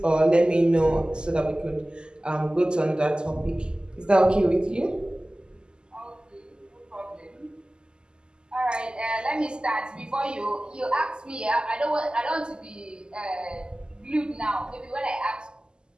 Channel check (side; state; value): left; late; 0.047 ms